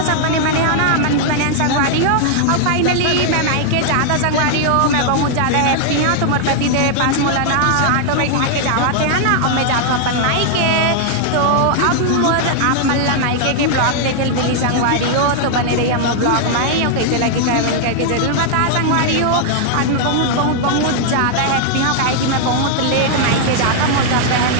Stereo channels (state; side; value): different; both; correlation 0.00